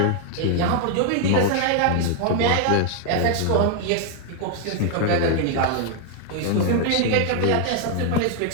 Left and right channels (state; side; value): different; both; correlation 0.00